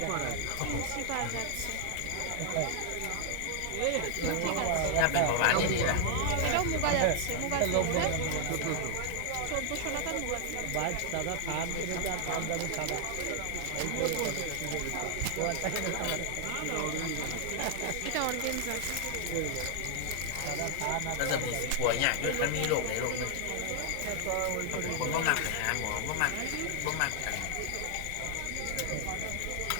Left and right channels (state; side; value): different; both; correlation 0.00